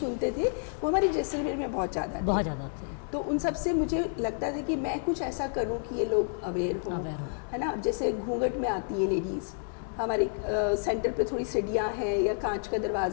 थे, वो हमारे जैसलमेर में बहुत ज़्यादा थे। बहुत ज़्यादा होती है। तो उन सब से मुझे लगता था कि मैं कुछ ऐसा करूं कि ये लोग अवेयर हों, Aware हों। है ना। अब जैसे घूंघट में आती है लेडीज़, हमारे सेंटर पे थोड़ी सीढ़ियाँ हैं या कांच का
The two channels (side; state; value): right; silent; 58 dB below the other